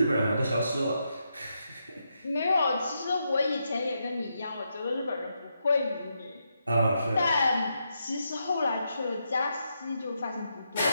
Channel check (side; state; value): both; inverted; correlation -0.82